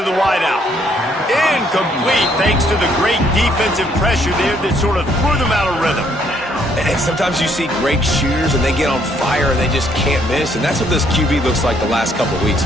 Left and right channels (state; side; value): normal; both; correlation 0.68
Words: the wideout. Incomplete thanks to the great defensive pressure there that sort of threw them out of rhythm. And sometimes you see great shooters and they get on fire and they just can't miss. And that's what this QB looks like the last couple of weeks,